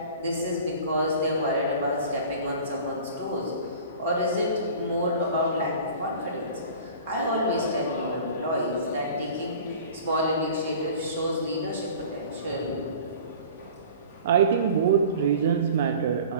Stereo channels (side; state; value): both; inverted; correlation -0.42